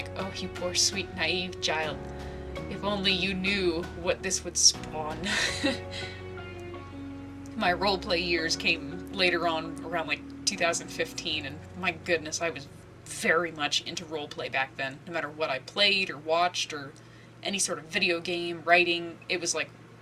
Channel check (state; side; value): identical; both; correlation 1.00